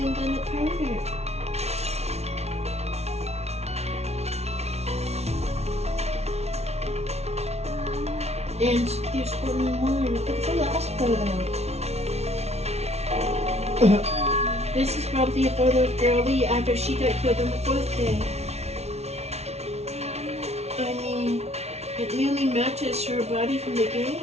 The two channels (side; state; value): left; late; 0.31 ms